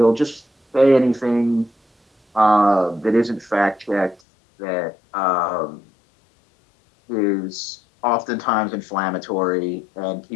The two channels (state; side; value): drops out; right; at 4.2 s